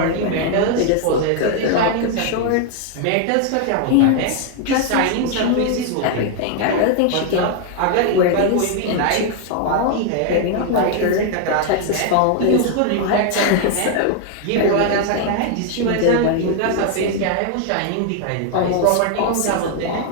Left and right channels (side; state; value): both; different; correlation 0.00